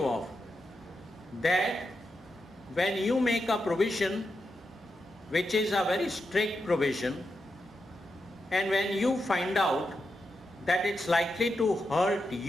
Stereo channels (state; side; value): normal; both; correlation 0.87